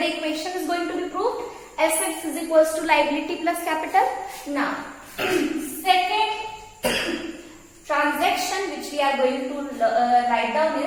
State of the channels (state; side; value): identical; both; correlation 1.00